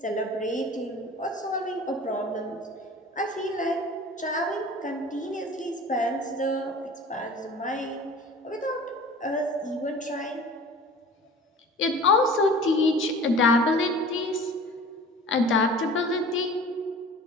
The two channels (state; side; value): normal; both; correlation 0.42